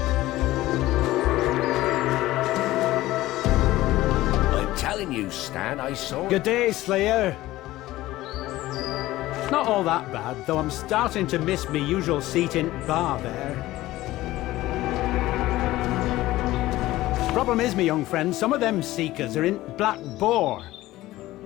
You, Stan, I saw. Good day, Slayer. Not all that bad, though I'm starting to miss me usual seat in bar there. Problem is, me young friend, some of them seekers are in Black Boar.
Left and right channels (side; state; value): right; quieter; 16.7 dB